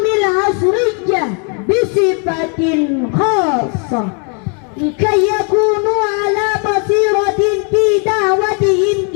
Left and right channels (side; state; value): right; quieter; 38.3 dB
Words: العصرية بصفة خاصة، لكي يكونوا على بصيرة في دعوتهم